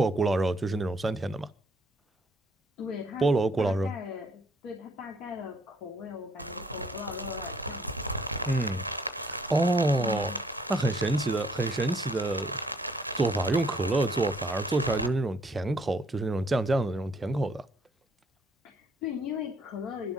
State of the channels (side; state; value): both; normal; correlation 0.65